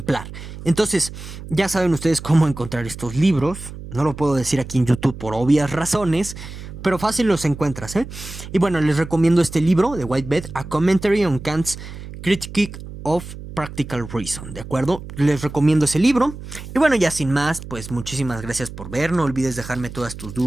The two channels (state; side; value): noise; right; hum, 12 dB below the sound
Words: Entonces, ya saben ustedes cómo encontrar estos libros. No lo puedo decir aquí en YouTube por obvias razones, pero fácil los encuentras, ¿eh? Y bueno, les recomiendo este libro de Whitebeck, A Commentary on Kant's Critique of Practical Reason, ¿de acuerdo? Les recomiendo ese libro. Y bueno, ya sin más, pues muchísimas gracias por ver. No olvides dejarme todas tus